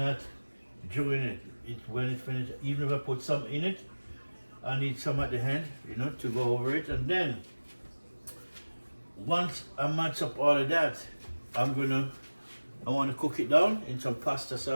during it. It's when it finished. Even if I put some in it, I need some at the end, you know, to go over it. And then once I match up all of that, I want to cook it down in some pasta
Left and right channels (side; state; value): both; inverted; correlation -1.00